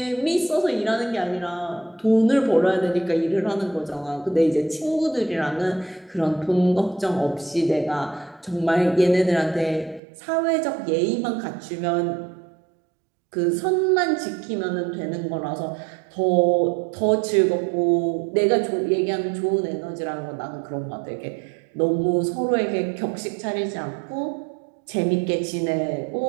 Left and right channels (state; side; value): drops out; left; at 10.0 s